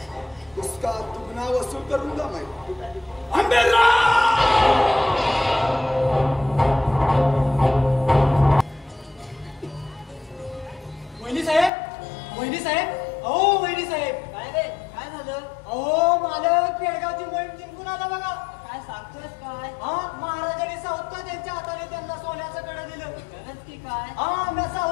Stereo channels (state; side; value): drops out; right; at 11.7 s